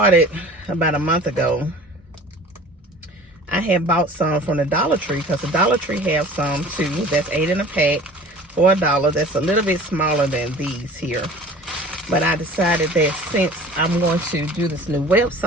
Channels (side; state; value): both; normal; correlation 0.44